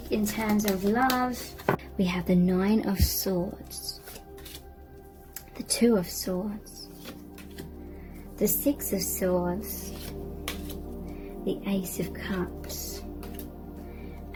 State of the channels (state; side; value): identical; both; correlation 1.00